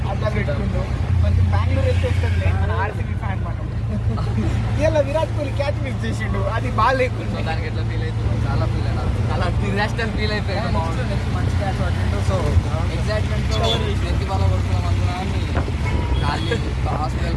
అట్లా పెట్టుకుంటూ కొంచెం బెంగళూరు వెళ్తే వస్తుంది మన ఆర్సీబీ ఫ్యాన్ మనం ఇలా విరాట్ కోహ్లీ క్యాచ్ మిస్ చేసిండు, అది బాగా లేకుండా దానికి ఎట్లా ఫీల్ అవుతుంది? చాలా ఫీల్ అయినా చాలా డిజాస్టర్ ఫీల్ అయిపోయాడు. మంచి క్యాచ్ పట్టిండు. సో ఎగ్జైట్మెంట్తో వ్యక్తి బాగా కొడుతున్నాం అనుకున్నాను.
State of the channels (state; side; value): identical; both; correlation 1.00